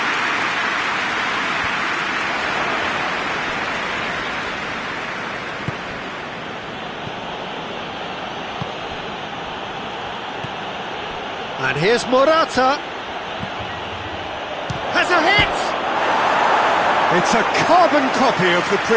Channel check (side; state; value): both; identical; correlation 1.00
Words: And here's Morata. Has a hit! It's a carbon copy of the